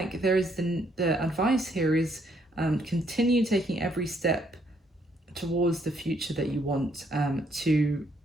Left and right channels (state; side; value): normal; both; correlation 0.70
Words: there is the advice here is continue taking every step towards the future that you want to